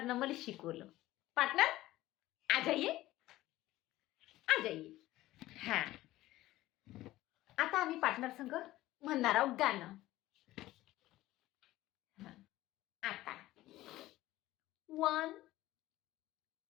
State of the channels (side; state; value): right; quieter; 16.4 dB